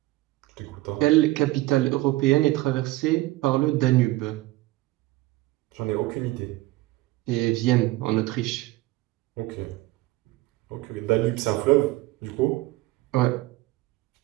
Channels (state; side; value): quieter; left; 18.8 dB